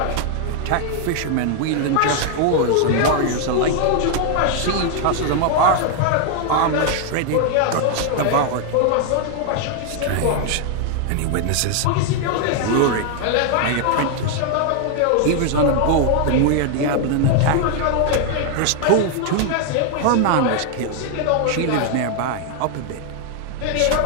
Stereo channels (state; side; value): different; both; correlation 0.00